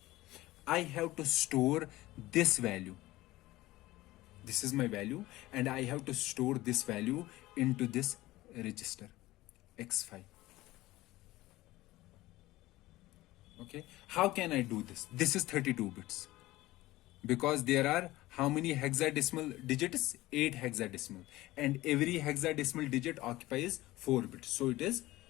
I have to store this value. This is my value, and I have to store this value into this register x5. Okay, how can I do this? This is 32 bits, because there are how many hexadecimal digits? 8 hexadecimal, and every hexadecimal digit occupies 4 bits, so it is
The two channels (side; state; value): right; quieter; 17.8 dB